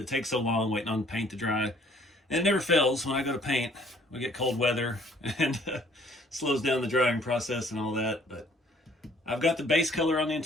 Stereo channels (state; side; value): normal; both; correlation 0.59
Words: takes so long waiting on paint to dry. And it never fails when I go to paint. We get cold weather and slows down the drying process and all that. But I've got the base color on the